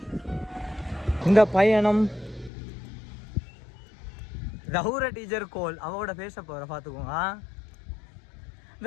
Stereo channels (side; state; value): right; drops out; at 2.5 s